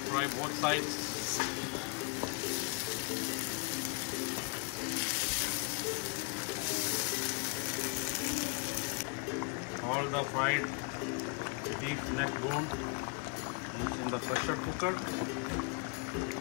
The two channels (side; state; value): right; quieter; 34.1 dB